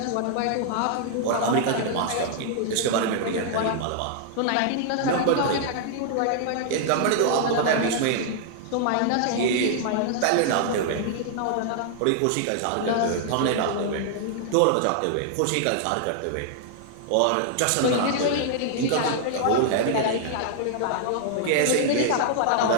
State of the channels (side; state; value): both; different; correlation -0.01